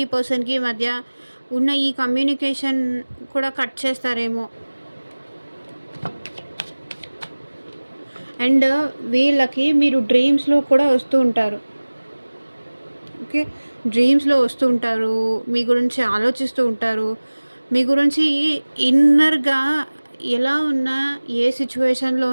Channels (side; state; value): both; inverted; correlation -1.00